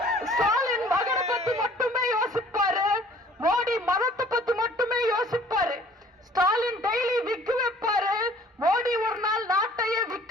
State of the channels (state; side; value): normal; both; correlation 0.53